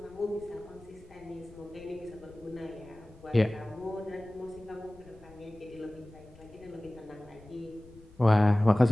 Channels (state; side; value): noise; left; rumble, 23 dB below the sound